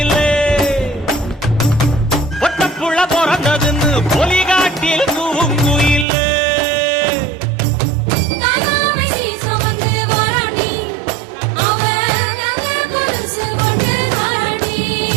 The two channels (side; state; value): left; drops out; at 6.1 s